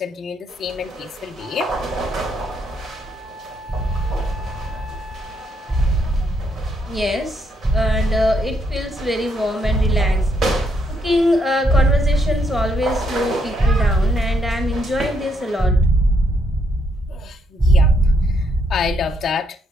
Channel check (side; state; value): both; normal; correlation 0.75